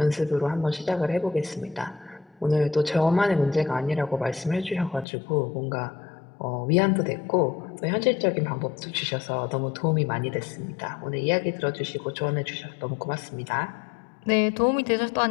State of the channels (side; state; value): right; drops out; at 5.1 s